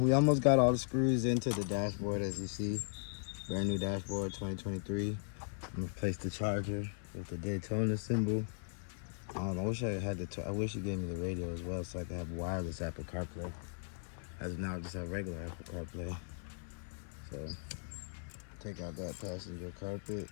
almost got all the screws into the dashboard, as you see. Brand new dashboard, 2023. I'm gonna place the charger with the Daytona symbol. I wish I had I wish you gave me the radio as well, so I could have wireless Apple CarPlay. As of now, I just have regular Apple CarPlay. So take out that passenger carpet.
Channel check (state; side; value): silent; right; 53 dB below the other